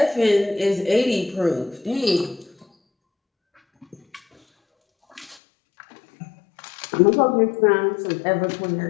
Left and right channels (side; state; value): right; drops out; at 5.4 s